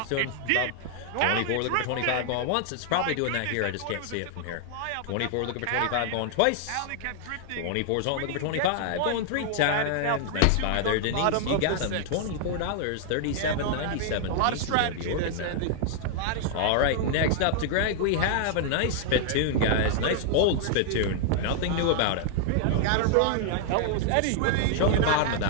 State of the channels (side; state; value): both; different; correlation 0.00